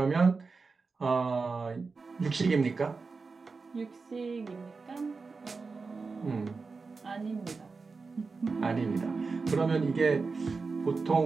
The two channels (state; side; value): quieter; left; 4.4 dB